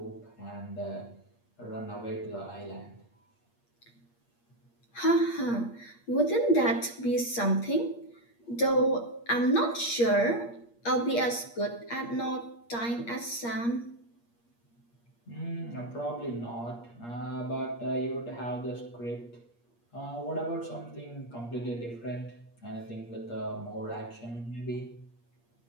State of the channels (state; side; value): late; right; 8.5 ms